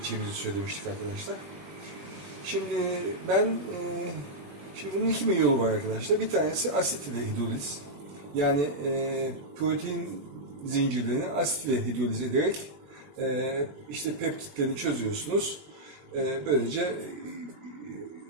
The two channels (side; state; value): left; late; 21 ms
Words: söylemiştik arkadaşlar. Şimdi bunun iki yolu var arkadaşlar. Bir tanesi asit ile hidroliz. Yani protein zincirlerini asit ile hidroliz ederek işte peptitlerini çözüyorsunuz. Böylece